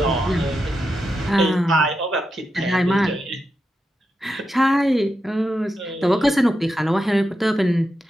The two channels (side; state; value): both; normal; correlation 0.87